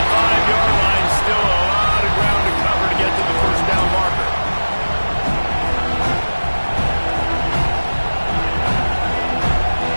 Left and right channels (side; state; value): both; inverted; correlation -1.00